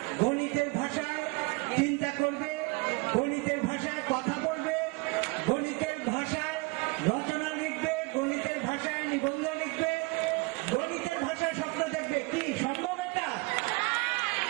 গণিতের ভাষায় চিন্তা করবে, গণিতের ভাষায় কথা বলবে, গণিতের ভাষায় রচনা লিখবে, গণিতের ভাষায় নিবন্ধ লিখবে, গণিতের ভাষায় স্বপ্ন দেখবে। কি সম্ভব এটা?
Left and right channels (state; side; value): quieter; left; 26.5 dB